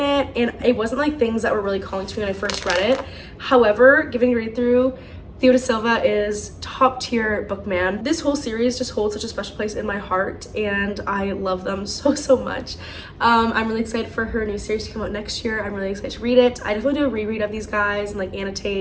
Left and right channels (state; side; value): identical; both; correlation 1.00